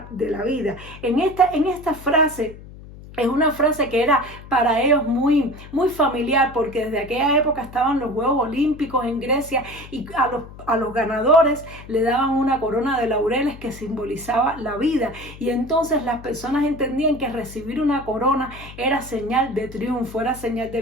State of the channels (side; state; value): left; noise; hum, 17 dB below the sound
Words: de la vida. En esta frase, es una frase que era para ellos muy familiar, porque desde aquella época estaban los Juegos Olímpicos en Grecia y a los ganadores le daban una corona de laureles que simbolizaba la vida. Y entonces las personas entendían que recibir una corona era señal de triunfo, era señal de